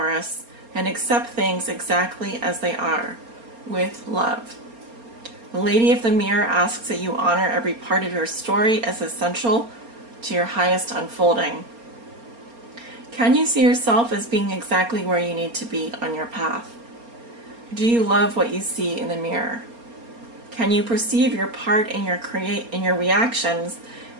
and accept things exactly as they are, with love. The Lady of the Mirror asks that you honor every part of your story as essential to your highest unfolding. Can you see yourself as being exactly where you need to be on your path? Do you love what you see in the mirror? Can you perceive your part in your reactions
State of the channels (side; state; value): left; late; 4.3 ms